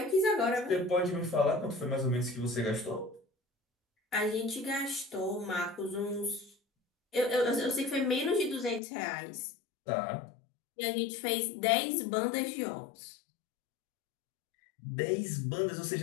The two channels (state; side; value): drops out; right; at 8.8 s